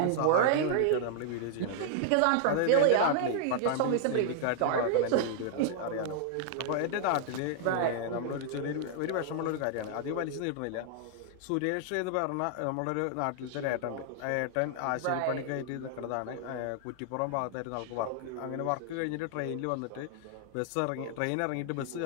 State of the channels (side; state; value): both; different; correlation -0.01